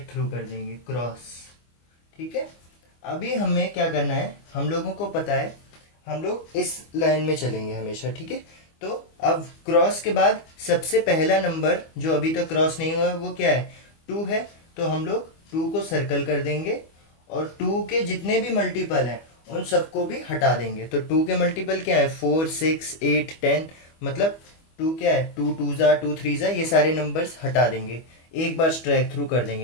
थ्रू कर देंगे, क्रॉस। ठीक है। अभी हमें क्या करना है, हम लोगों को पता है हम लोग इस लाइन में चलेंगे हमेशा। ठीक है। तो अब क्रॉस के बाद सबसे पहला नंबर जो अभी तक क्रॉस नहीं हुआ है वो क्या है, 2 है। तो हम लोग 2 को सर्कल कर देंगे और 2 के जितने भी मल्टीपल हैं उन सबको भी हटा देंगे। तो 2 के मल्टीपल क्या है, 4 6 8 10, मतलब 2 क्या है, 2 2 जा 2 3 जा, ये सारे नंबर्स हटा देंगे। एक बार स्ट्राइक थ्रू कर देंगे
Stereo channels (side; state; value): right; late; 25 ms